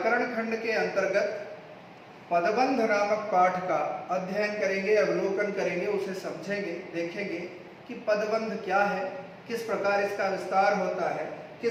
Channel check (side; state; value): both; identical; correlation 1.00